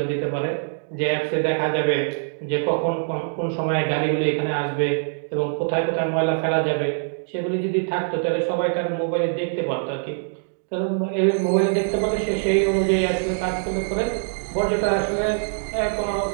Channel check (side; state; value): left; silent; digital silence